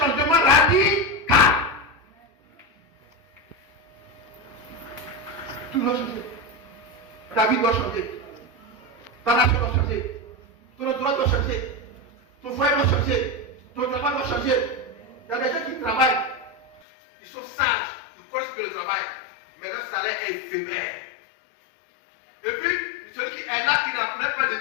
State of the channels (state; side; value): drops out; right; at 16.8 s